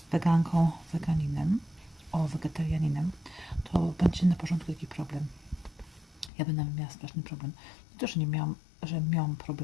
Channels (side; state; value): right; drops out; at 6.3 s